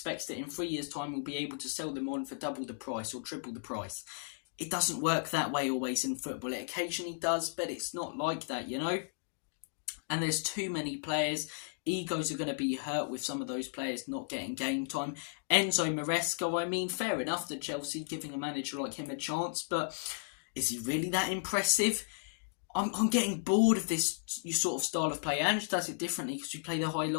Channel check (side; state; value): right; silent; digital silence